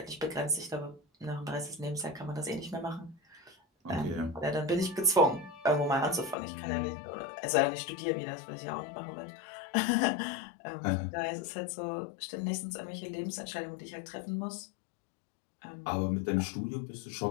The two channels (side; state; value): right; drops out; at 6.4 s